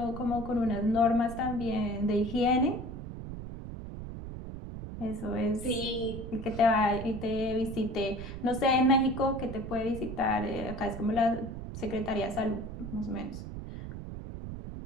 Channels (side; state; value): right; noise; rumble, 9 dB below the sound